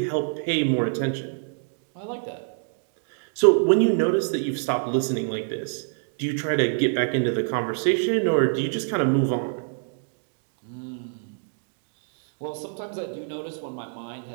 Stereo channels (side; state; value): left; silent; digital silence